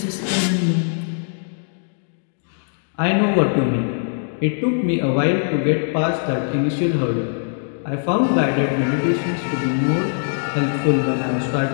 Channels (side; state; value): right; silent; digital silence